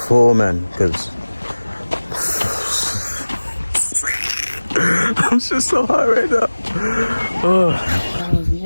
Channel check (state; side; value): inverted; both; correlation -1.00